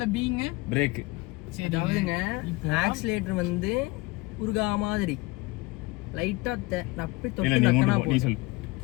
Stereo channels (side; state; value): right; quieter; 23.2 dB